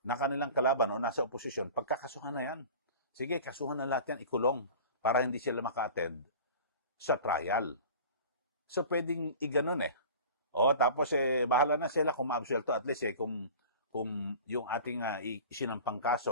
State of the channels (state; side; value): inverted; both; correlation -0.40